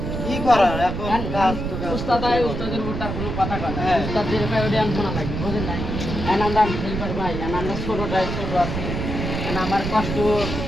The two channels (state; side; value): noise; right; rumble, 4 dB below the sound